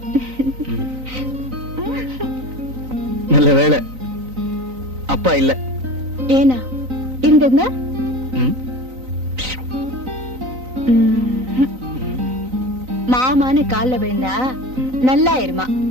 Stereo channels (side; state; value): left; late; 3.9 ms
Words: நல்ல வேளை அப்பா இல்ல. ஏனா இருந்திருந்தா ம். மாமான்னு கால்ல விழுந்தா நல்லா இருமா,